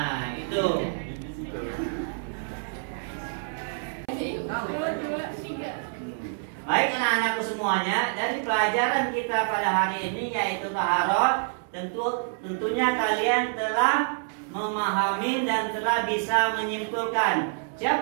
Itu. 1, 2, 3. Baik anak-anakku semuanya, dari pelajaran kita pada hari ini yaitu taharah, tentunya kalian telah memahami dan telah bisa menyimpulkan.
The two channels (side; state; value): left; silent; 60 dB below the other